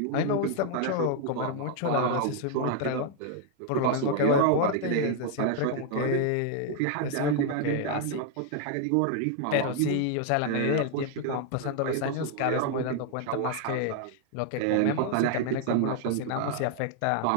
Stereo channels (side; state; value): both; different; correlation 0.00